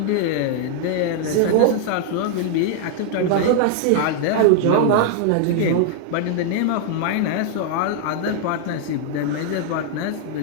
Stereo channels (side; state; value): both; different; correlation 0.00